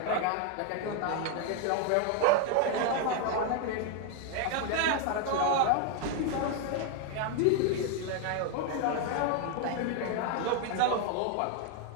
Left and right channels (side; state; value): both; different; correlation 0.01